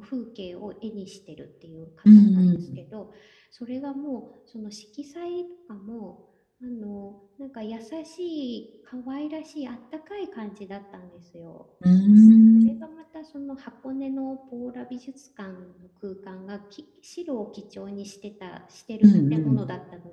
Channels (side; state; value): both; identical; correlation 1.00